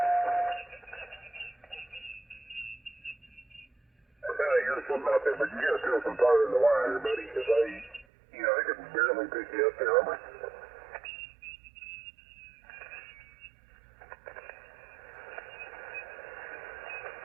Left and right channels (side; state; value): left; drops out; at 8.1 s